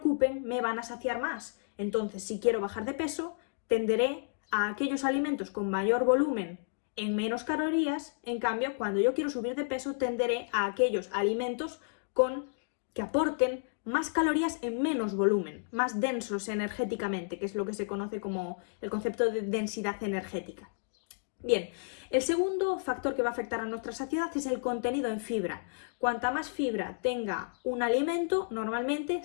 me van a saciar más. Entonces, si quiero bajar de peso, tenderé a aquellos alimentos con mayor volumen en menos calorías. En cambio, cuando yo quiero subir de peso, tenderé a aquellos alimentos que aporten más calorías en menos volumen, más densos energéticamente, que es lo que se conoce como el concepto de densidad energética. Bien, el segundo factor que va a afectar a nuestra saciedad es el contenido en fibra. Cuanta más fibra tenga un alimento, normalmente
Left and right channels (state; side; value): silent; right; digital silence